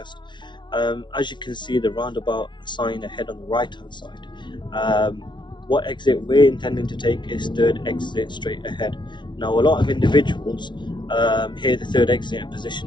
As you can see, the roundabout sign ahead on the right hand side. Um, what exit we're intending to take is third exit straight ahead. Now, a lot of individuals hear the third exit and position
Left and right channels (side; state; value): right; late; 0.23 ms